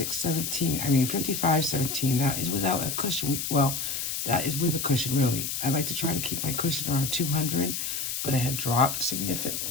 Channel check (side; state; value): left; noise; hiss, 3 dB below the sound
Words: That is without a cushion. That is with a cushion, really. I like to try to keep my cushion around $200, but it had dropped